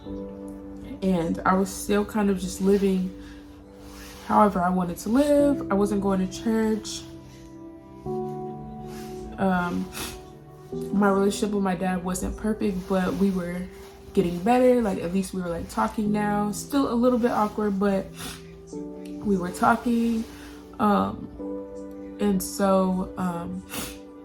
and I was still kind of just living however I wanted to live. I wasn't going to church. My relationship with my dad wasn't perfect, but we were getting better. Like, at least we were like talking now. Still a little bit awkward, but we were talking. And so,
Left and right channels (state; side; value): identical; both; correlation 1.00